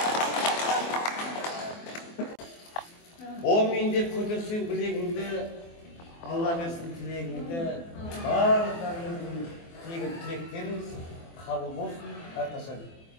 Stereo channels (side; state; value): right; late; 24 ms